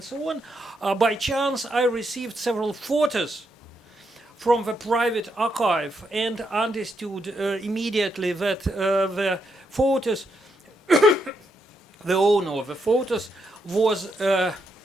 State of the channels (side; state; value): both; normal; correlation 0.80